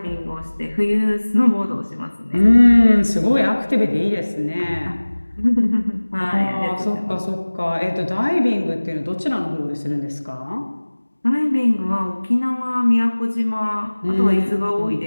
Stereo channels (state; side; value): inverted; both; correlation -1.00